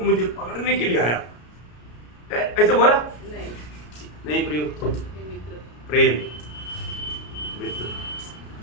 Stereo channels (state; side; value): late; right; 33 ms